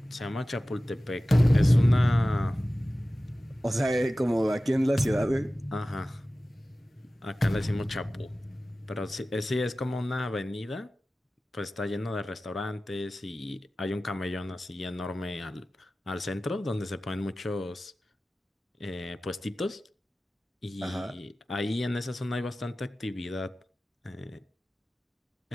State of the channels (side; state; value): both; normal; correlation 0.96